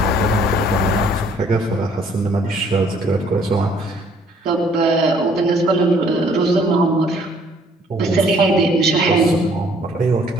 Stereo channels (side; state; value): both; normal; correlation 0.61